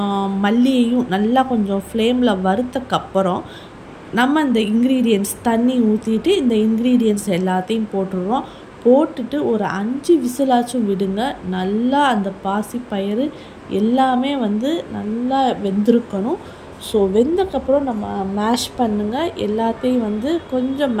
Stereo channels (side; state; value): both; identical; correlation 1.00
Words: மல்லியையும் நல்லா கொஞ்சம் ஃப்ளேமில் வறுத்தக்கப்புறம் நம்ம இந்த இன்க்ரீடியன்ட்ஸ் தண்ணி ஊற்றிட்டு இந்த இன்க்ரீடியன்ட்ஸ் எல்லாத்தையும் போட்டுடுறோம். போட்டுட்டு ஒரு 5 விசிலாச்சும் விடுங்க. நல்லா அந்த பாசிப்பயிறு எல்லாமே நல்லா வெந்திருக்கணும். ஸோ வெந்தக்கப்புறம் நம்ம மேஷ் பண்ணுங்கள். எல்லாத்தையும் கொஞ்சம்